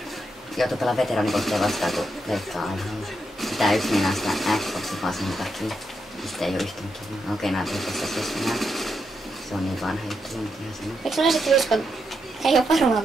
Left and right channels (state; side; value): normal; both; correlation 0.82